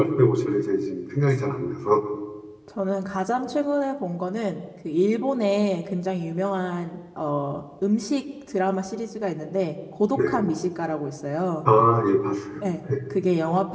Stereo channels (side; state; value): both; identical; correlation 1.00